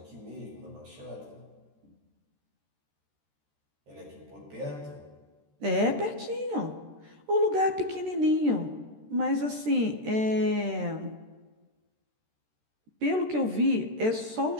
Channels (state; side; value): late; left; 13 ms